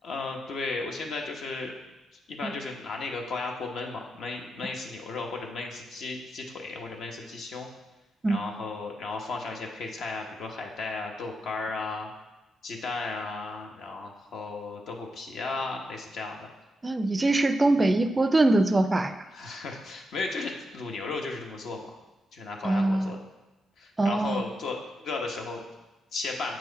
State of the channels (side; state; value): both; normal; correlation 0.86